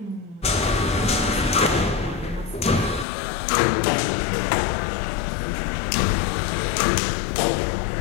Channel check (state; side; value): drops out; right; at 3.1 s